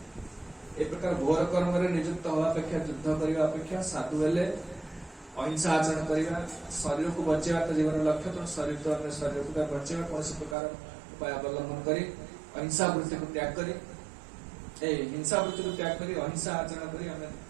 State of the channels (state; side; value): drops out; left; at 10.6 s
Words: ए प्रकार घोर कर्म रे नियुक्त हवा अपेक्षा युद्ध करने अपेक्षा साधु हेले अहिंसा आचरण करवा शरीर को बचेवा तो जीवन लक्ष्य तो शरीर तो अन्य शरीर को बचेवा कौन प्रकार उपाय अवलंबन करी अहिंसा वृत्ति को त्याग करी हिंसा वृत्ति को त्याग करी अहिंसा आचरण करी हमें